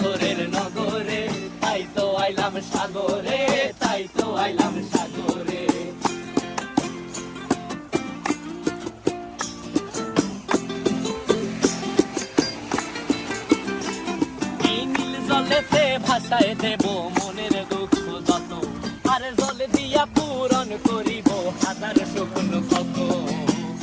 নগরে, তাই তো আইলাম সাগরে, তাই তো আইলাম সাগরে। এই নীল জলেতে ভাসায় দেব মনের দুঃখ যত, আর জলে দিয়া পূরণ করিব হাজার স্বপ্ন কত।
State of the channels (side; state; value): both; identical; correlation 1.00